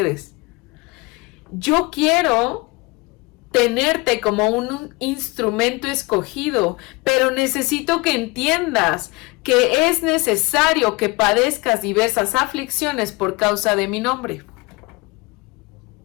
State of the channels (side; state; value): right; quieter; 25.0 dB